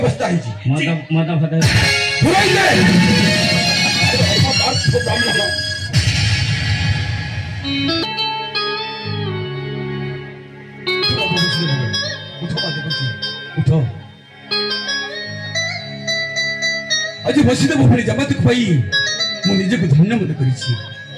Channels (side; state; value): both; identical; correlation 1.00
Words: है जी मत फत पुराई ले उठो आज बसिदेव पुणी जमातक पाई मु निजे को धन्य मत करिछि